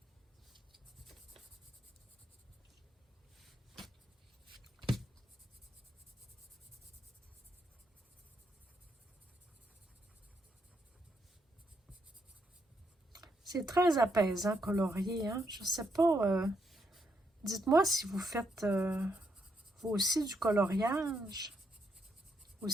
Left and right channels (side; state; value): both; normal; correlation 0.77